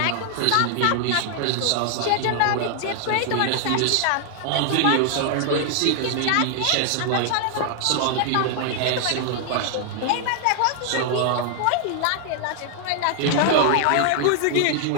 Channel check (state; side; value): different; both; correlation 0.00